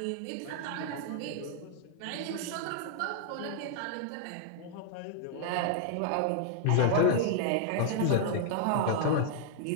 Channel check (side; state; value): both; different; correlation 0.00